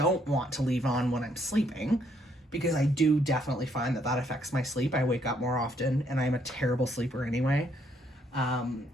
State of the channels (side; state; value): both; normal; correlation 0.70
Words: want to leave on when I'm sleeping because I do definitely find that affects my sleep. I wake up more often and I'm a terrible sleeper anyway.